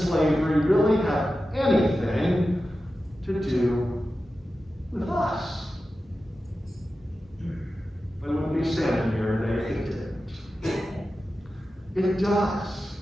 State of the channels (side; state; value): both; normal; correlation 0.93